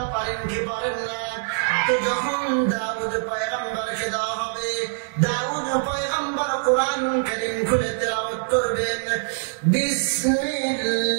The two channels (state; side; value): silent; left; digital silence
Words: পারেন কি পারেন না। তো যখন দাউদ পয়গম্বরকে দেওয়া হবে, দাউদ পয়গম্বর কোরআন কারীম খুলে তেলাওয়াত করবেন,